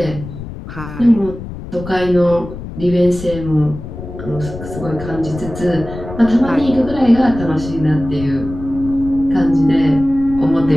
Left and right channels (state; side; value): noise; left; rumble, 11 dB below the sound